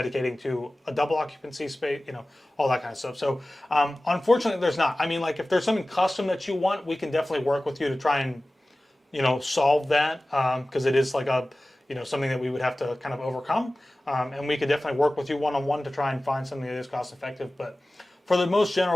to a double occupancy space, you know, all that kind of stuff. So unfortunately, there's not. I mean, like if there's something custom that you want, we can definitely work with you to try and, you know, solve that, because it is like a, you know, something that we would have to kind of overcome. And we could definitely work with you one-on-one to try and find something that is cost effective. But for the most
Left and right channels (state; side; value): normal; both; correlation 0.97